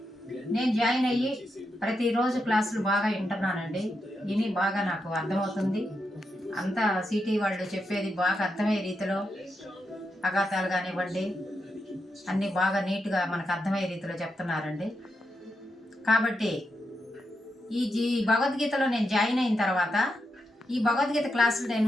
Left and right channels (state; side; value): normal; both; correlation 0.85